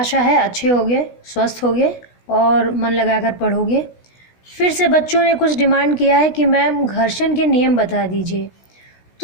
है अच्छे होगे, स्वस्थ होगे और मन लगाकर पढ़ोगे। फिर से बच्चों ने कुछ डिमांड किया है कि मैम घर्षण के नियम बता दीजिए।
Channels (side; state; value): right; late; 16 ms